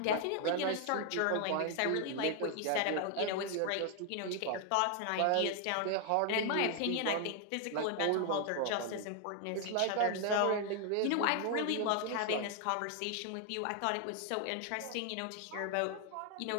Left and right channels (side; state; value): both; different; correlation 0.00